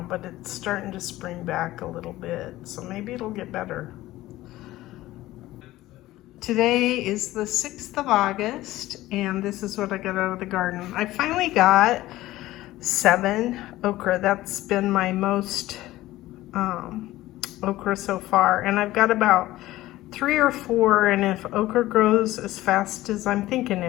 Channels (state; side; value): quieter; right; 16.4 dB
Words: but it's starting to spring back a little bit, so maybe it'll get better. Today is the 6th of August, and this is what I got out of the garden. I finally got 7 okra. That's been my most okra so far, and I've got about 3 or 4, and if okra grows as fast as I'm thinking